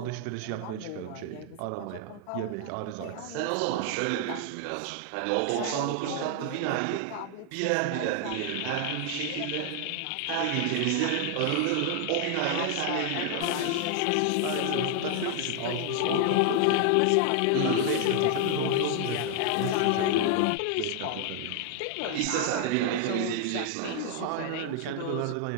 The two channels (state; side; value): different; both; correlation 0.00